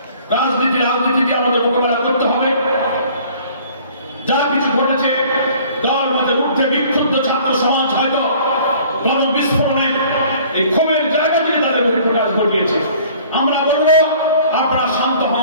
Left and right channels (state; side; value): inverted; both; correlation -0.52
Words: রাজনীতি দিয়ে আমাদের মোকাবেলা করতে হবে। যা কিছু ঘটেছে, দল মধ্যে উঠে বিক্ষুব্ধ ছাত্র সমাজ হয়তো গণবিস্ফোরণে এই ক্ষোভের জায়গা থেকে তাদের বহিঃপ্রকাশ ঘটিয়েছে। আমরা বলবো আপনারা শান্ত